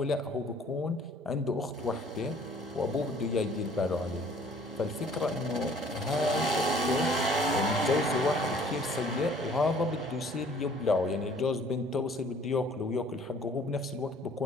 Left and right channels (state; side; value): normal; both; correlation 0.55